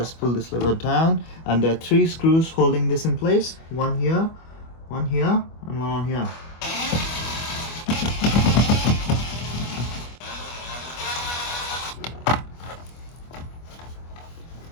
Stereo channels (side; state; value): right; late; 25 ms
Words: pull this lever down, and there are three screws holding this in place. One here, and one on here.